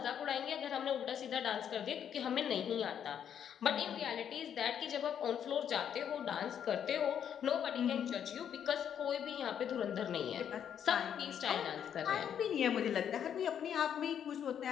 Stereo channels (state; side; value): quieter; right; 8.8 dB